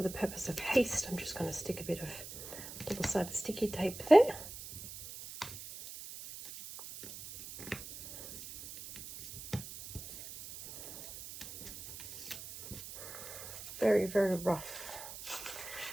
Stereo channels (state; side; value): noise; right; hiss, 11 dB below the sound